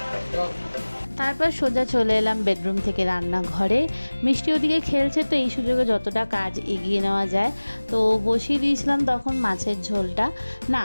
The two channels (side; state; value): both; inverted; correlation -1.00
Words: তারপর সোজা চলে এলাম বেডরুম থেকে রান্নাঘরে। মিষ্টি ওদিকে খেলছে, তো এই সুযোগে যতটা কাজ এগিয়ে নেওয়া যায়। তো বসিয়ে দিয়েছিলাম তখন মাছের ঝোলটা। না,